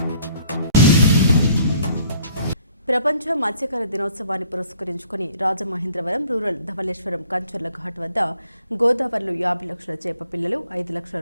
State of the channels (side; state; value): both; inverted; correlation -0.59